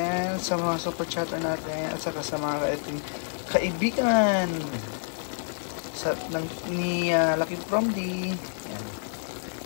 sa mga super chatter natin, at saka sa mga ating kaibigan ni Lucky From D. Ayan.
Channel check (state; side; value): silent; right; digital silence